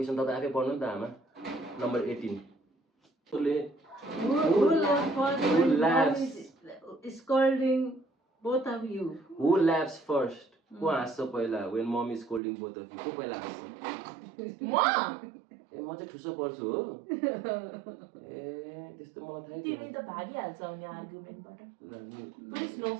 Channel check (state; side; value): drops out; left; at 12.4 s